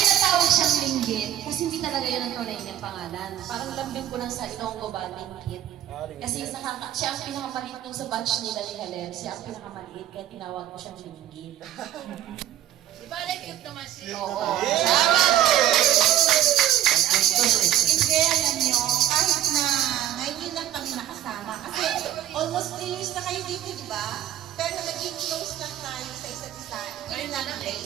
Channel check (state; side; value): quieter; left; 12.2 dB